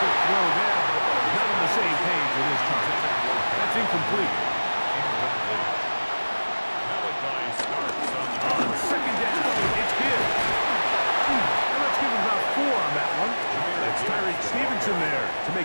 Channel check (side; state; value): both; inverted; correlation -1.00